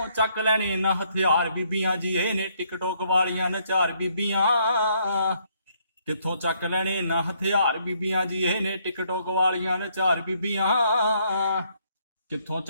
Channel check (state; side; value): inverted; both; correlation -0.70